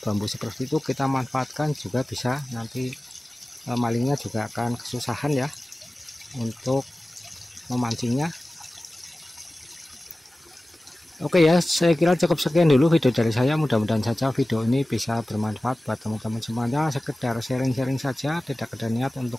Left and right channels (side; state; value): both; normal; correlation 0.96